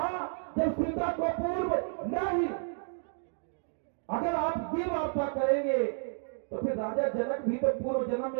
जब सीता को पूर्व नहीं? अगर आप ये वार्ता करेंगे तो फिर राजा जनक भी तो पूर्व जन्म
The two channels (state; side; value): silent; left; 57 dB below the other